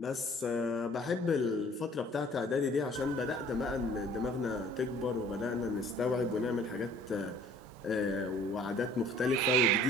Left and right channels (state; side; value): normal; both; correlation 0.53